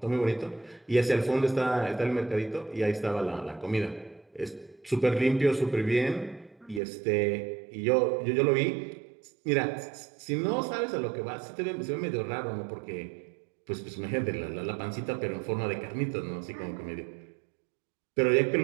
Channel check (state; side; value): drops out; left; at 6.8 s